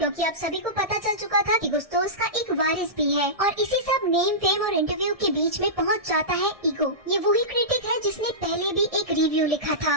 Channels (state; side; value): late; left; 1.6 ms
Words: अब सभी को पता चल चुका था कि गुस्तोस का एक वारिस भी है, और इसी सब नेम फेम और इंटरव्यू के बीच में पहुँच जाता है ईगो। ये वही क्रिटिक है जिसने पहले भी एक रिव्यू लिखा था,